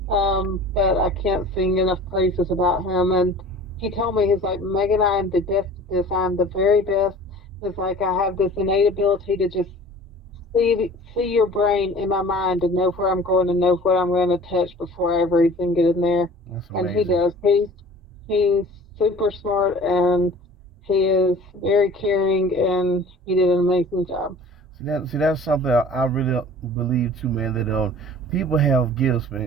but I can't sing enough praises about him. And he told me, he's like, Megan, I am the best at this. I'm the very best. It's like I have this innate ability to just see your brain in my mind and know where I'm going and know what I'm going to touch before I ever even get in there. that's And he amazing. does. He's super smart and he is very caring and he did an amazing job. See, that's something I really believe too, man. That people have gifts,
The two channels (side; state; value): both; normal; correlation 0.44